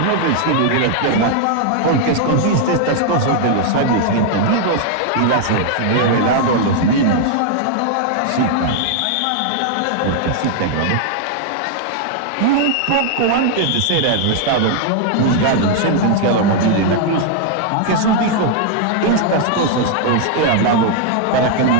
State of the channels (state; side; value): different; both; correlation 0.00